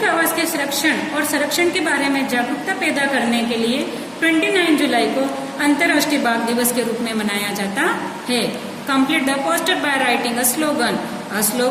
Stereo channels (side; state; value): both; identical; correlation 1.00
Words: आवास के संरक्षण के बारे में जागरूकता पैदा करने के लिए 29 जुलाई को अंतर्राष्ट्रीय बाघ दिवस के रूप में मनाया जाता है. Complete the poster by writing a slogan. A